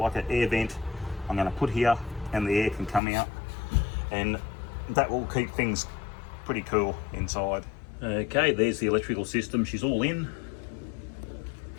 an air vent I'm going to put here, and the air can come out, and that will keep things pretty cool inside. Okay, there's the electrical system. She's all in.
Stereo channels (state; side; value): drops out; right; at 3.0 s